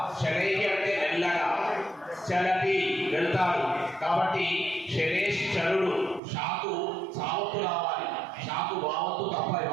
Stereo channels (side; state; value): left; drops out; at 6.2 s